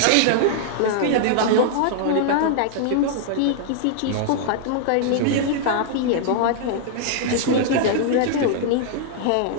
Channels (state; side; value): different; both; correlation -0.01